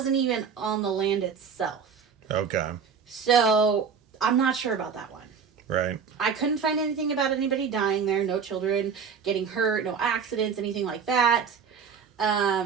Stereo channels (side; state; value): left; quieter; 6.4 dB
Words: even on the land itself. Okay. So, I'm not sure about that one. Right. I couldn't find anything about anybody dying there, no children getting hurt, no accidents, anything like that.